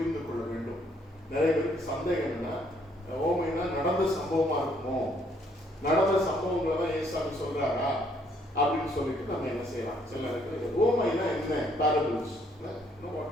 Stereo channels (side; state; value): both; normal; correlation 0.67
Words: கொள்ள வேண்டும். நிறைய பேருக்கு சந்தேகம் என்னன்னா, ஓமைனா நடந்த சம்பவமா இருக்குமோ, நடந்த சம்பவங்களை தான் ஏசாமி சொல்றாரா அப்படின்னு சொல்லிட்டு நம்ம என்ன செய்யலாம். சில நேரத்தில் ஓமைனா என்ன? பேரபிள்ஸ்.